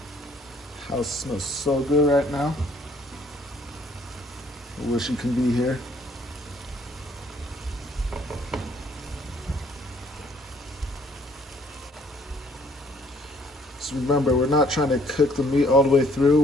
House smells so good right now. I wish you could be here. Just remember, we're not trying to cook the meat all the way through,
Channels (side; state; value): both; normal; correlation 0.62